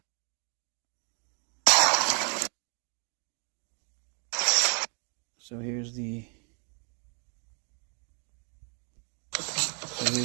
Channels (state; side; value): quieter; left; 38.4 dB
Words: So here's the